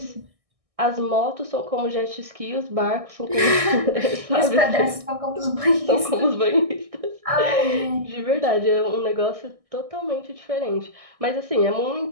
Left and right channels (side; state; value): left; late; 1.6 ms